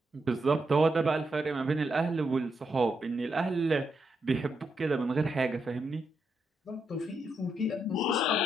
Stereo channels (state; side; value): normal; both; correlation 0.82